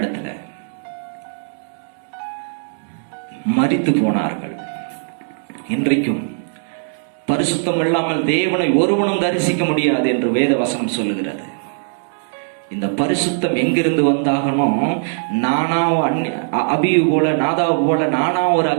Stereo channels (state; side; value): silent; left; digital silence